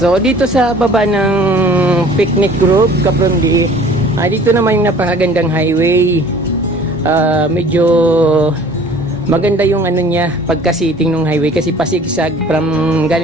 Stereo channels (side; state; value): both; normal; correlation 0.50